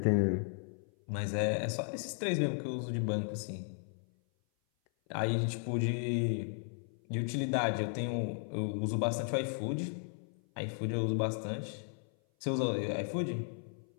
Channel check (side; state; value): right; silent; 54 dB below the other